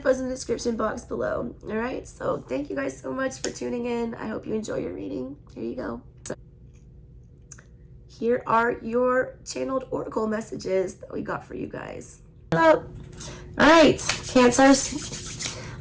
is in the description box below. All right, so thank you guys so much for tuning in. I hope you enjoy your reading. Here you go. Here are your channeled oracle messages that we got for you guys. All right, Cancers,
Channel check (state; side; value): identical; both; correlation 1.00